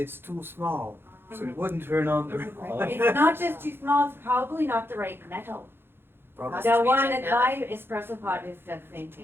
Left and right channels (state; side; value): late; left; 0.11 ms